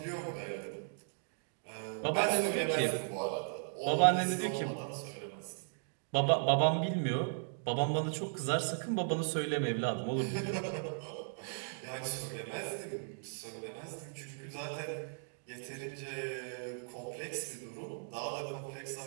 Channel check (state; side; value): silent; left; digital silence